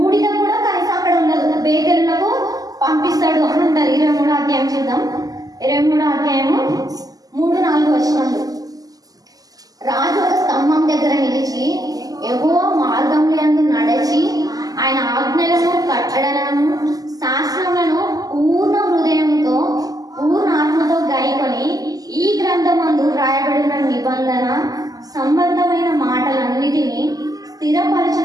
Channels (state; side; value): late; left; 0.17 ms